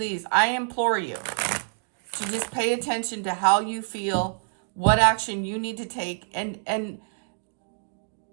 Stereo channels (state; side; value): silent; left; digital silence